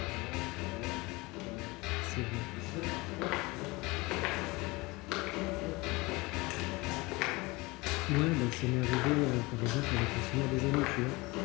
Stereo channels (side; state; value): right; quieter; 23.4 dB